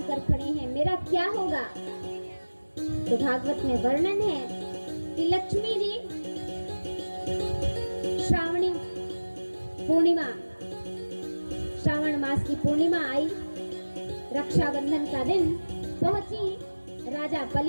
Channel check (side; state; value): both; inverted; correlation -1.00